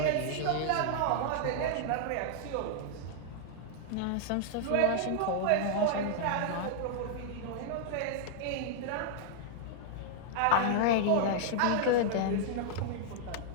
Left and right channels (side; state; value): both; different; correlation -0.01